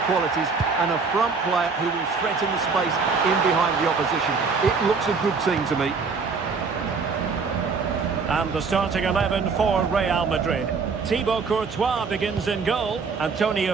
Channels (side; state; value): left; quieter; 4.9 dB